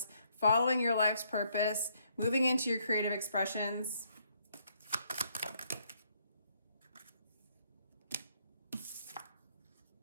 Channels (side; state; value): both; inverted; correlation -0.70